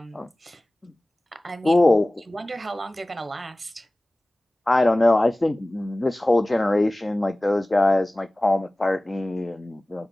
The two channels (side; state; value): both; normal; correlation 0.98